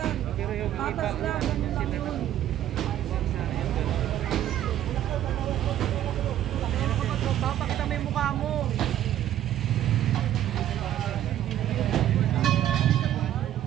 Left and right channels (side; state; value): left; quieter; 12.0 dB